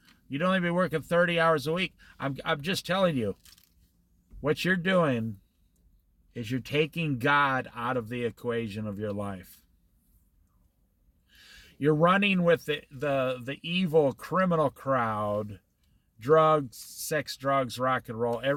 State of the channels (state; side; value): identical; both; correlation 1.00